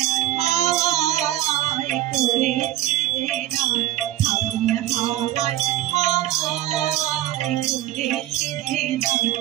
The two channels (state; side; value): quieter; left; 13.7 dB